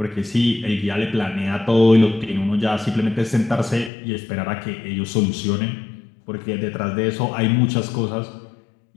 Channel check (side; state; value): right; drops out; at 3.9 s